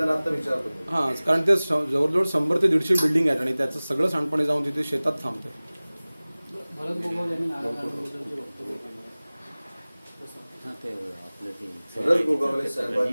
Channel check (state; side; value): inverted; both; correlation -0.99